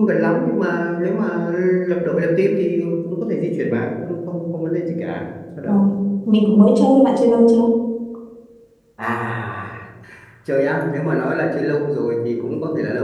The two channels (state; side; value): identical; both; correlation 1.00